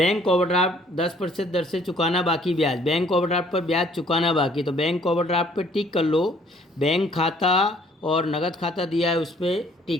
ओवरड्राफ्ट 10% दर से चुकाना बाकी ब्याज, बैंक ओवरड्राफ्ट पर ब्याज चुकाना बाकी, तो बैंक ओवरड्राफ्ट पर टिक कर लो। बैंक खाता और नगद खाता दिया है, उस पर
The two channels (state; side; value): normal; both; correlation 0.60